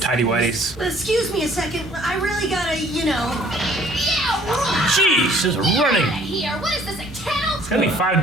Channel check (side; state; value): both; normal; correlation 0.57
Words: tidy whities. Excuse me a second. I really gotta, you know. Yeah, Jeez, just running. here. What is this, a kennel? It's gonna be 5